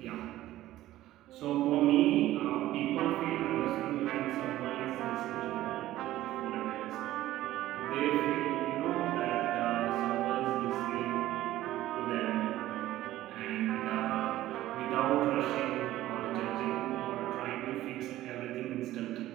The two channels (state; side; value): quieter; left; 14.9 dB